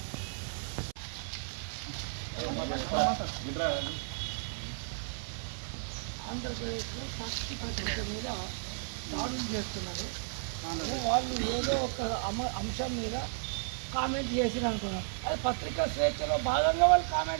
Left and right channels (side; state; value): left; silent; 55 dB below the other